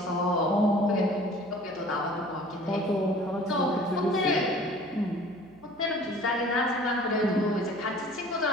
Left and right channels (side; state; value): right; noise; hum, 26 dB below the sound